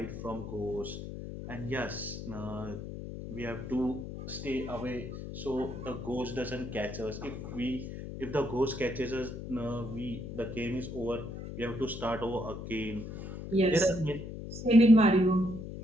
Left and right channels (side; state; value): left; noise; hum, 8 dB below the sound